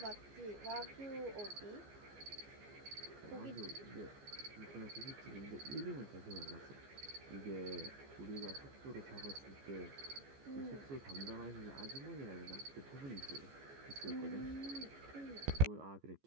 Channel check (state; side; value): late; left; 14 ms